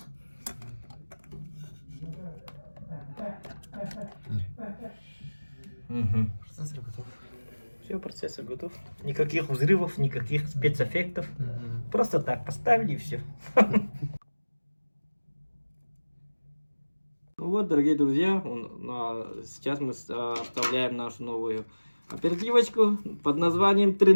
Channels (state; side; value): inverted; both; correlation -1.00